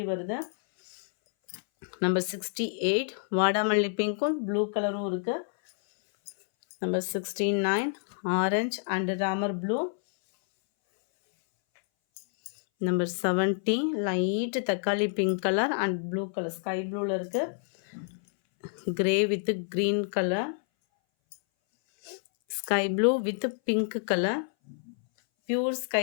வருது. நம்பர் 68 வாடாமல்லி பிங்க்கும் ப்ளூ கலரும் இருக்குது. Number 69 orange and Ramar blue. Number 70 light தக்காளி pink colour and blue colour sky ப்ளூவில் இருக்குது. Grey with green colour, sky blue with pink colour, pure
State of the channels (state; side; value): silent; right; 59 dB below the other